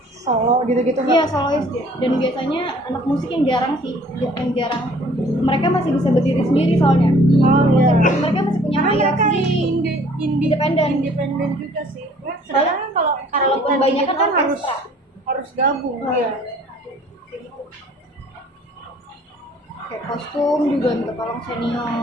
solo gitu-gitu. Iya, solois dia. Dan biasanya anak musik yang jarang sih, yang jarang. Mereka masih bisa berdiri sendiri soalnya. Iya. Mereka masih punya hayat sendiri. Independen juga sih. Soalnya kalau kebanyakan kan harus gabung. Iya. Kayak kostum juga minta tolong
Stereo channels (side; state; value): both; normal; correlation 0.55